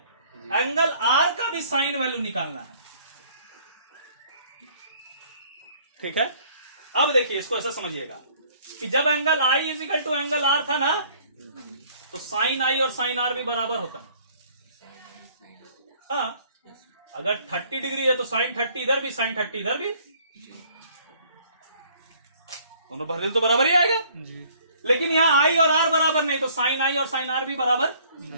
एंगल आर का भी साइन वैल्यू निकालना है। ठीक है, अब देखिए इसको ऐसा समझिएगा कि जब angle I is equal to angle R था ना, तो साइन आई और साइन आर भी बराबर होता है। हाँ, अगर 30 डिग्री है तो साइन 30 इधर भी, साइन 30 इधर भी, दोनों भर तो बराबर ही आएगा जी। लेकिन यहां आई और आर बराबर नहीं, तो साइन आई और साइन आर भी बराबर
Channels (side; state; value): both; inverted; correlation -0.58